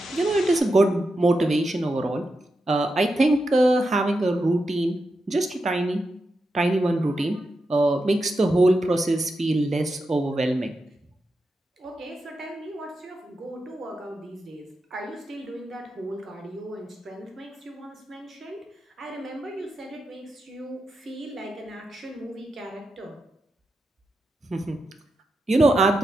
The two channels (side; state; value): both; normal; correlation 0.88